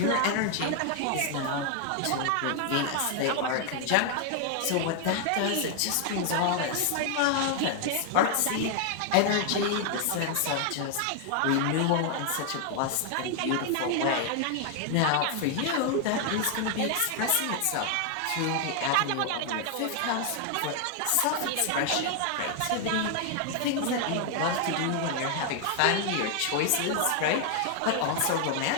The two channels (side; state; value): both; different; correlation 0.00